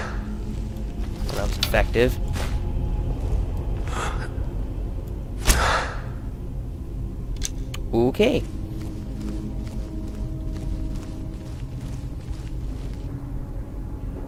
that was effective. Okay.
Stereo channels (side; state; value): both; identical; correlation 1.00